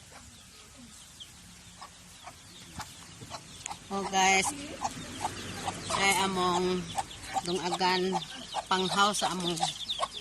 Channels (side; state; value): both; identical; correlation 1.00